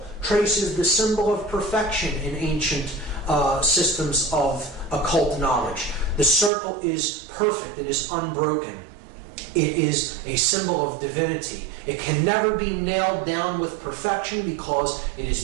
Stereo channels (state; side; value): drops out; left; at 6.5 s